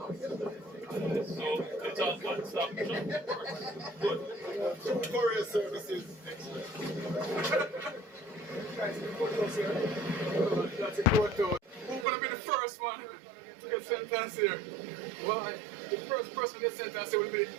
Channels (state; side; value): drops out; left; at 12.1 s